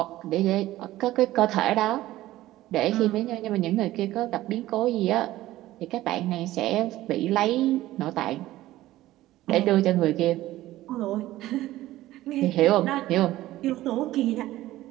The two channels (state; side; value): quieter; left; 15.7 dB